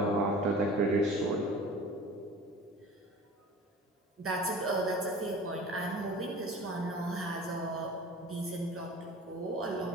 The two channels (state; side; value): normal; both; correlation 0.41